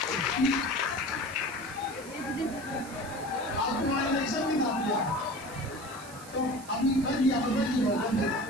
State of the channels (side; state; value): right; noise; hiss, 17 dB below the sound